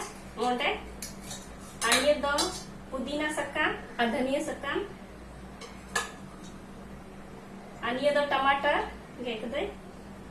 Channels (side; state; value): both; identical; correlation 1.00